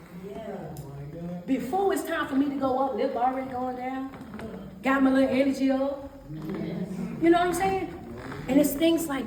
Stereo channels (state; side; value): identical; both; correlation 1.00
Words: Before it's time for me to go up, lip already going down. Got my little energy up. You know what I'm saying? And it's things